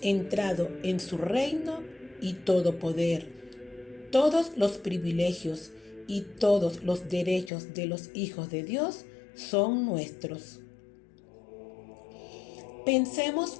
entrado en su reino y todo poder, todos los privilegios y todos los derechos de los hijos de Dios son nuestros. Pensemos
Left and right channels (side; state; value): right; drops out; at 7.5 s